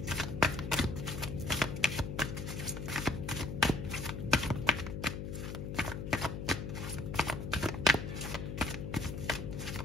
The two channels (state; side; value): noise; left; hum, 5 dB below the sound